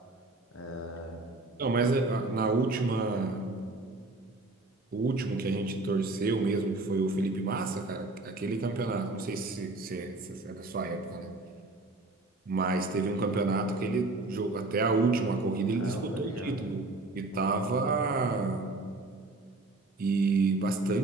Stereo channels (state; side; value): quieter; left; 3.1 dB